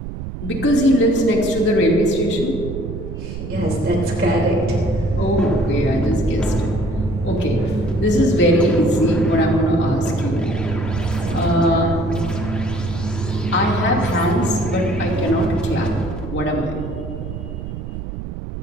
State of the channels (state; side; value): noise; right; rumble, 8 dB below the sound